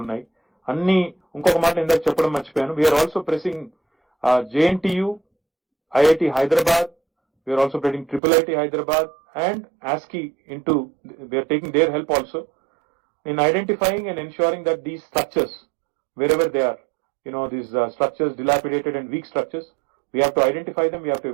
ఉన్నాయి అన్ని. ఇంకొక మాట ఇందాక చెప్పడం మర్చిపోయాను, we're also pressing JNTU, IIT Hyderabad, we're also pressing IIIT Hyderabad and ASCI into, we are taking their help also in identifying and ensuring that these structures, wherever they are, these structures, dilapidated and weak structures, we have to identify them, we have to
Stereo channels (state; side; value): drops out; left; at 8.2 s